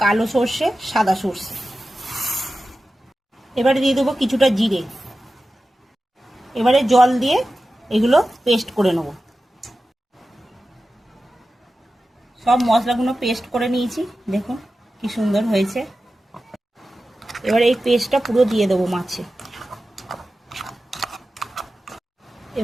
কালো সর্ষে, সাদা সর্ষে, এবারে দিয়ে দেবো কিছুটা জিরে। এবারে জল দিয়ে এগুলো পেস্ট করে নেব। সব মশলাগুলো পেস্ট করে নিয়েছি, দেখুন কি সুন্দর হয়েছে। এবারে এই পেস্টটা পুরো দিয়ে দেবো মাছে।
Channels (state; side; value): normal; both; correlation 0.94